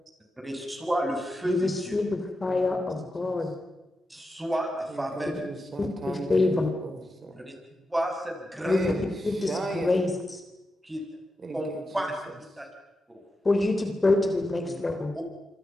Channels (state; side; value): normal; both; correlation 0.89